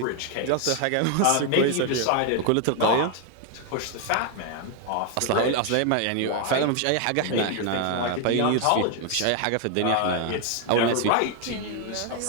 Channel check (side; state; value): both; different; correlation 0.01